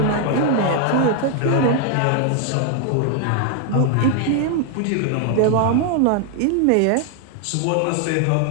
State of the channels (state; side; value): different; both; correlation 0.00